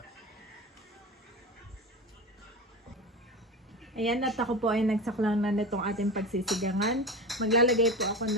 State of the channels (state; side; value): normal; both; correlation 0.26